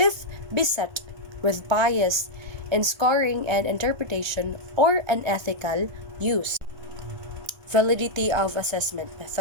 beset with bias in scoring and interpretation or unethical use. Validity of assessment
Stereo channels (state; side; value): late; left; 1.2 ms